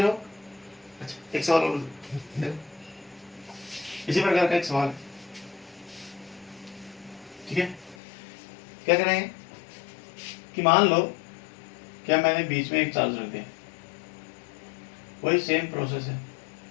हो? अच्छा, एक सवाल और देखो, इसी प्रकार का एक सवाल. ठीक है, क्या करेंगे कि मान लो क्या मैंने बीच में एक चार्ज रख दिया. वही सेम प्रोसेस है,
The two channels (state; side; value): drops out; right; at 8.0 s